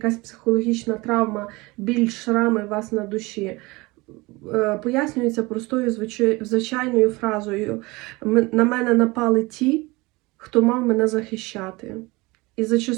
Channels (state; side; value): quieter; left; 23.2 dB